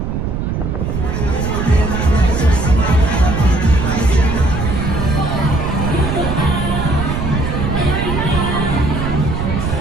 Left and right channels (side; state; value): right; noise; rumble, 2 dB below the sound